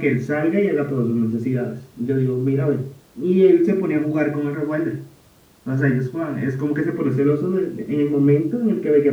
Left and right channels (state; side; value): identical; both; correlation 1.00